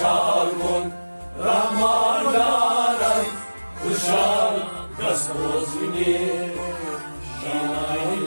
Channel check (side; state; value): both; inverted; correlation -1.00